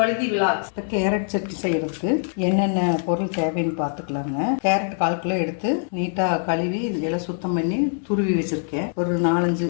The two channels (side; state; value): right; silent; 63 dB below the other